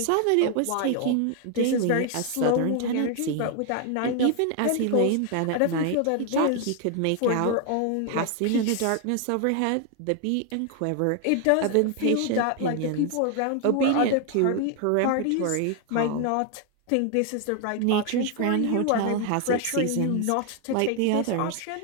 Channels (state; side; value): different; both; correlation 0.01